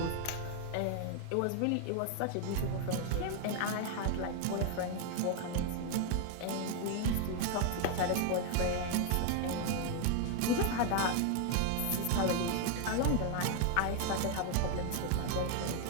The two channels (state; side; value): different; both; correlation 0.00